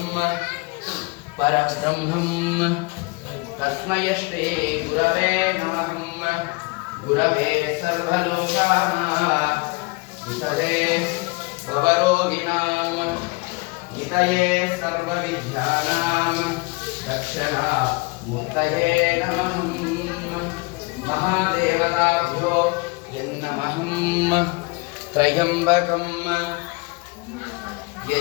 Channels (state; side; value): quieter; right; 27.0 dB